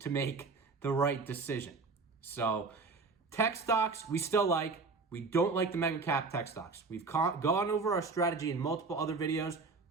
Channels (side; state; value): left; quieter; 4.1 dB